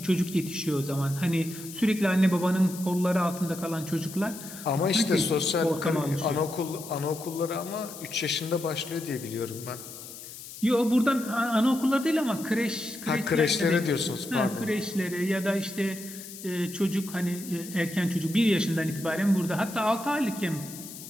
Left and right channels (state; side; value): noise; left; hiss, 13 dB below the sound